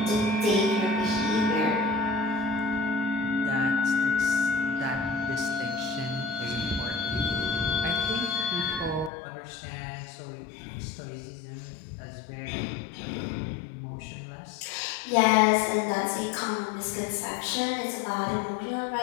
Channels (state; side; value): drops out; right; at 9.1 s